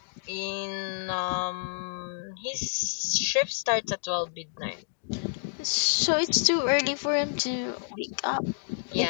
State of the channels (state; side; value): silent; right; digital silence